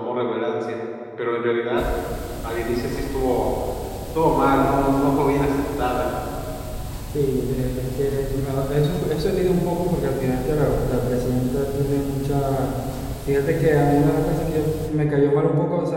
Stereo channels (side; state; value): both; identical; correlation 1.00